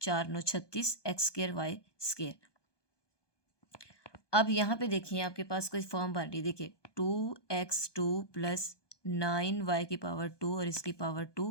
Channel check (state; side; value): late; right; 1.2 ms